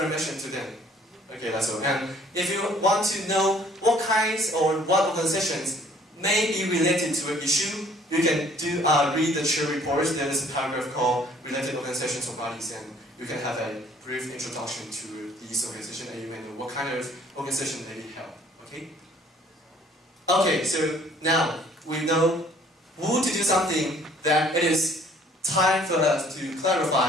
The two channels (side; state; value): both; normal; correlation 0.57